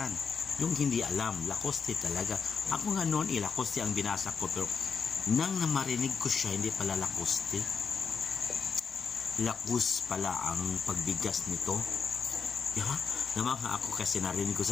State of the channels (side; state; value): right; quieter; 5.9 dB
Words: Yung hindi alam, Lacoste talaga. Ako nga noon, Lacoste ang binasa ko. Pero, nang namarinig ko siya, hindi pala Lacoste. Lacus pala ang pagbigas nito. Namangha ako kasi narinig